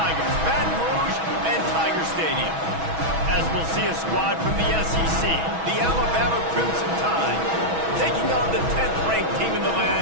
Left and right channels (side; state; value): left; late; 6.2 ms